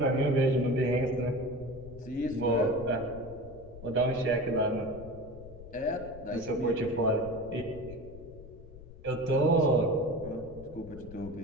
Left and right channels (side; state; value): left; noise; rumble, 16 dB below the sound